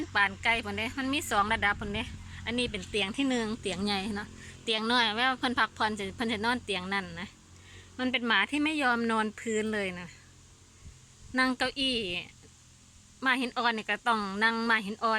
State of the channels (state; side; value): identical; both; correlation 1.00